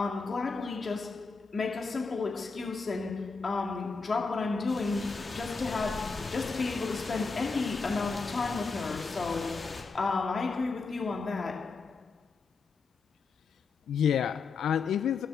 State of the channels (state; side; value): quieter; right; 4.5 dB